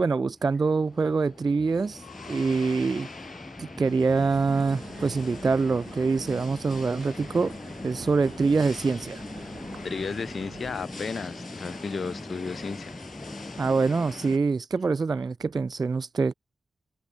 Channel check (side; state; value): left; quieter; 3.4 dB